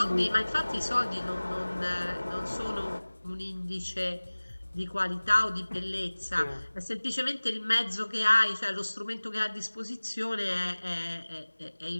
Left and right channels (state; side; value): inverted; both; correlation -1.00